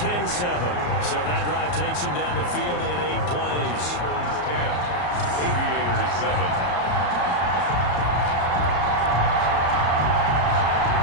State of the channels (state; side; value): late; right; 34 ms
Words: So that drive takes him down the field in 8 plays. 10. Aviators 7.